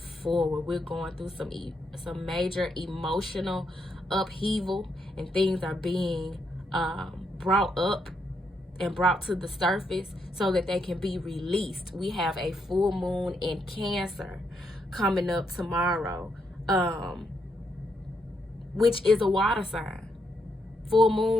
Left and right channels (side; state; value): both; normal; correlation 0.78